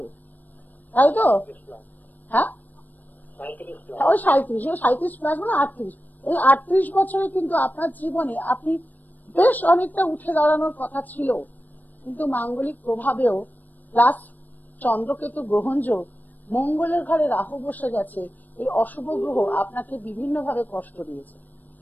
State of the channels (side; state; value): right; late; 0.085 ms